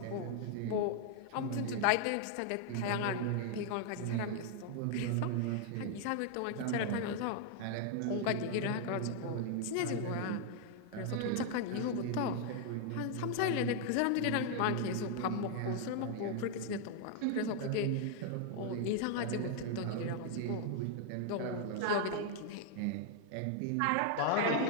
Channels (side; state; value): both; different; correlation 0.00